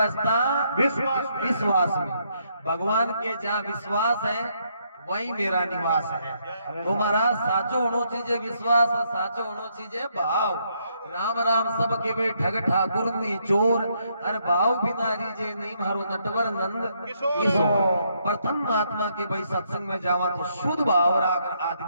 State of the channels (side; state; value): both; inverted; correlation -0.74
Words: विश्वास में। भगवान के जहाँ विश्वास है वही मेरा निवास है। तो महाराज साचो होनो चीजे विश्वास और साचो होनो चीजे भाव। राम राम सब के वे ठग ठाकुर नी चोर अरे भाव बिना रीजे नहीं मारो नटवर नंद किशोर। प्रथम महात्मा के भाई सत्संग में जावा तो शुद्ध भाव राकर